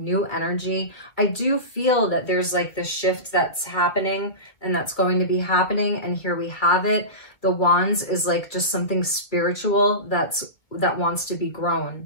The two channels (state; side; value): late; right; 2.1 ms